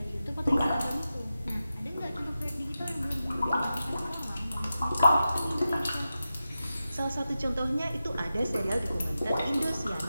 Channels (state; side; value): inverted; both; correlation -0.92